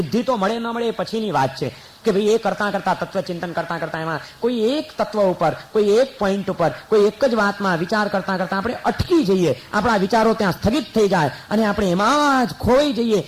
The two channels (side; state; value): both; identical; correlation 1.00